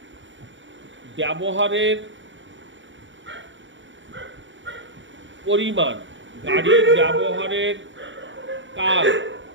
ব্যবহারের পরিমাণ, গাড়ির ব্যবহারের কাল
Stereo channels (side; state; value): left; late; 0.55 ms